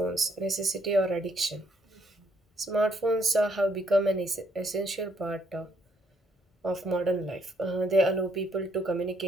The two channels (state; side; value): normal; both; correlation 0.70